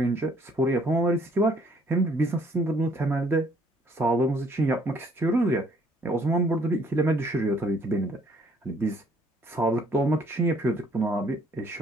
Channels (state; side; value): normal; both; correlation 0.63